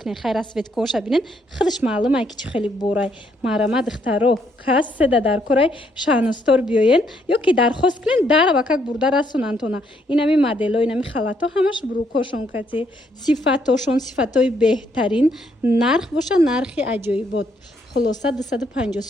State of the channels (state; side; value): normal; both; correlation 0.72